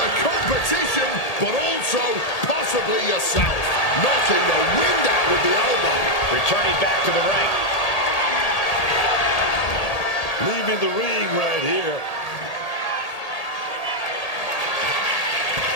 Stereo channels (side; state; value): right; late; 1.8 ms